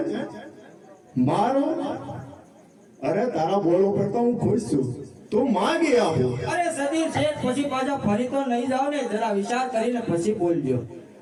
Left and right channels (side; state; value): both; identical; correlation 1.00